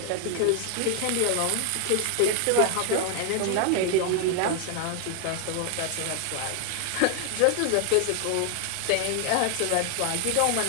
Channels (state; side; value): different; both; correlation 0.00